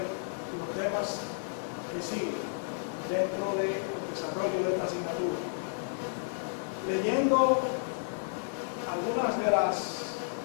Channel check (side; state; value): right; silent; digital silence